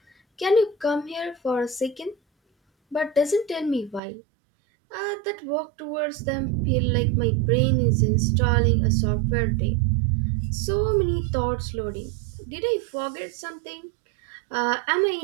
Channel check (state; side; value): drops out; left; at 4.0 s